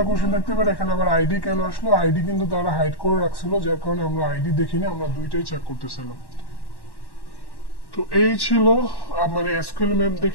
কোশ্চেন থাকতে পারে এখানে আবার আইডি কেন আসলো? আইডি কিন্তু তারা হাইড করে রাখছিল, যার কারণে আমরা আইডি দেখিনি, আমরা দুইটাই চেক করতেছিলাম। তো এই ছিল মানে এসকিউএল ম্যাপ দিয়ে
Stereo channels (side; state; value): right; late; 1.1 ms